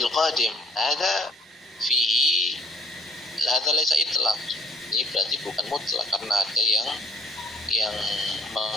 qadim. Ada fihi, ada laysa itlaq. Ini berarti bukan mutlak karena ada yang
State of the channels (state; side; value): normal; both; correlation 0.59